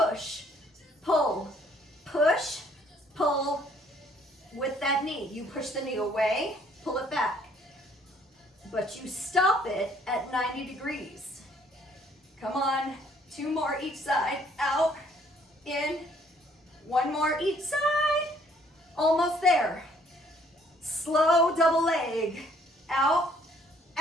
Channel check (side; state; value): both; normal; correlation 0.62